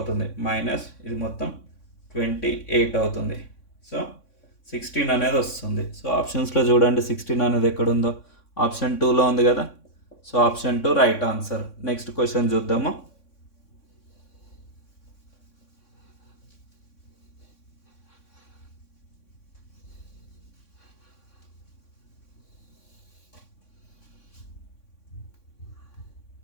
మైనస్ ఇది మొత్తం 28 అవుతుంది. సో 16 అనేది వస్తుంది. సో ఆప్షన్స్లో చూడండి 16 అనేది ఎక్కడుందో. ఆప్షన్ 2లో ఉంది కదా. So option 2 right answer. Next question చూద్దాము.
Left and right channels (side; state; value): right; late; 3.6 ms